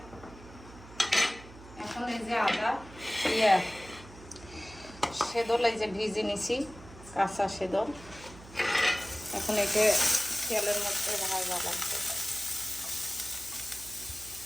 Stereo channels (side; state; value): right; noise; hum, 18 dB below the sound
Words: এখন এই যে আদা সেদল এই যে ভিজে নিছি, কাঁচা সেদল, এখন একে তেলের মধ্যে ভাজা লাগবে।